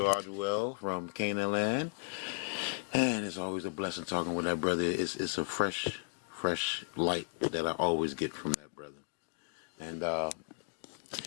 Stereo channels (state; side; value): silent; right; digital silence